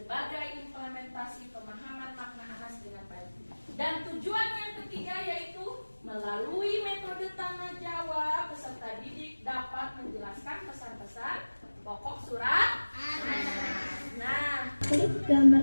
implementasi pemahaman makna Anas dengan baik. Dan tujuan yang ketiga yaitu melalui metode tanya jawab, peserta didik dapat menjelaskan pesan-pesan pokok surat Anas. Nah, Gambar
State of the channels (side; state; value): both; inverted; correlation -1.00